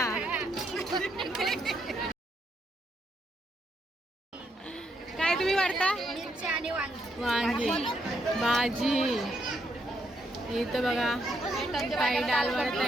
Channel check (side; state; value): both; normal; correlation 0.76